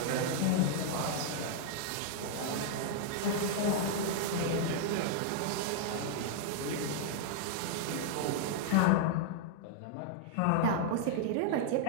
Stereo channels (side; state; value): both; different; correlation -0.01